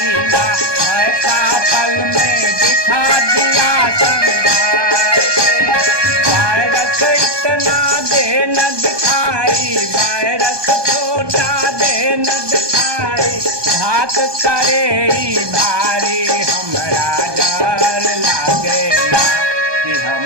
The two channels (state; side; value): late; left; 1.2 ms